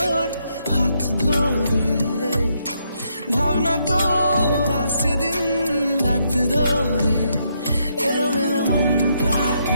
হাত ধরে। ভাবনা তোর আসছে দিন রাত ধরে, এলোমেলো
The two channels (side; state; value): both; inverted; correlation -0.76